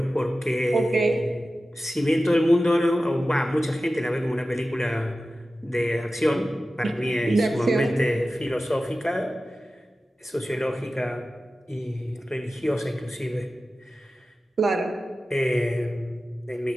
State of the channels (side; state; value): both; normal; correlation 0.94